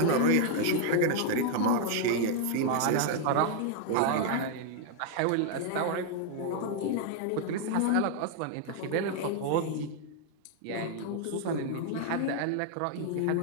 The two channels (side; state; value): both; different; correlation 0.00